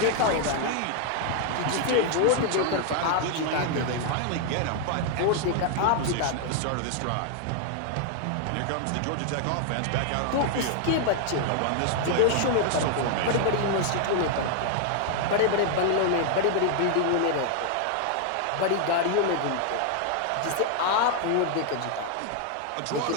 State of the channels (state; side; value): different; both; correlation 0.00